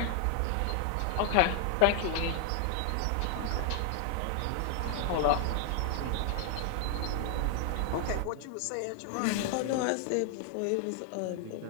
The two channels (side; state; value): both; different; correlation 0.00